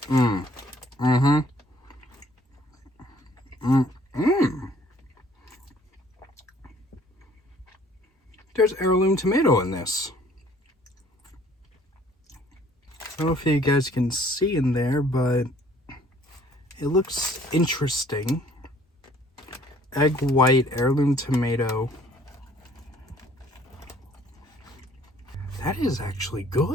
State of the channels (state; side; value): normal; both; correlation 0.58